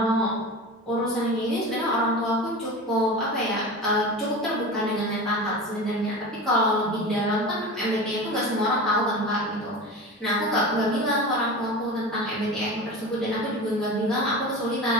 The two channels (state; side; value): normal; both; correlation 0.30